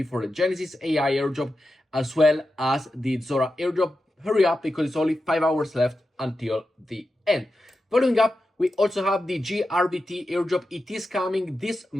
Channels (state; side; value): normal; both; correlation 0.90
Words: for the Genesis AI airdrop as well as the Zora airdrop. Hurry up because it's only 5 hours left until the end. Following up, we also have the GRBT airdrop. It is coming this